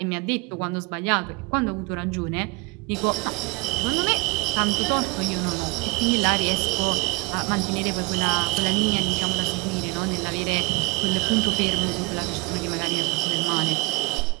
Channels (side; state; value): left; quieter; 26.3 dB